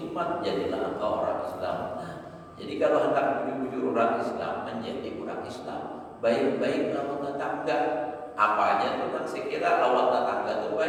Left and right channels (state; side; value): identical; both; correlation 1.00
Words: jadilah engkau orang Islam. Jadi kalau hendak menuju orang Islam menjadi orang Islam, baik-baik lawan tetangga. Apa aja tentang sekira lawan tetangga itu